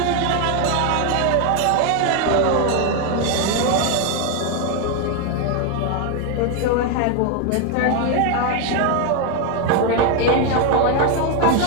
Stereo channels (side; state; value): both; different; correlation 0.01